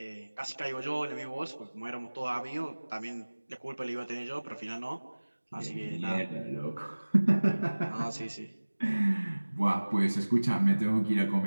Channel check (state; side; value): inverted; both; correlation -1.00